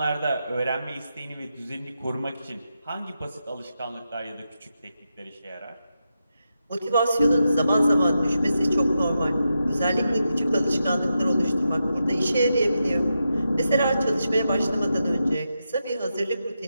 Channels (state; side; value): inverted; both; correlation -0.87